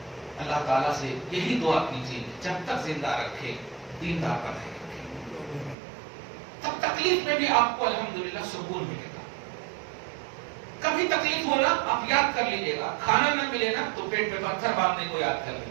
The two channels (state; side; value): drops out; left; at 5.8 s